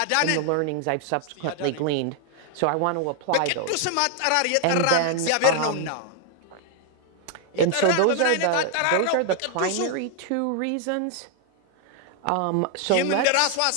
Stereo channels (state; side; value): different; both; correlation 0.00